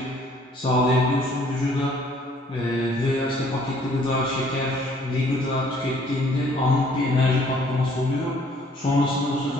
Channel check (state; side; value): normal; both; correlation 0.60